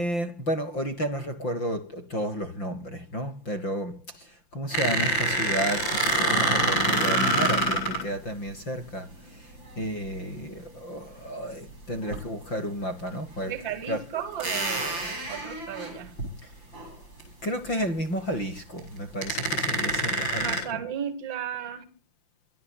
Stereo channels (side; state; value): right; late; 5.8 ms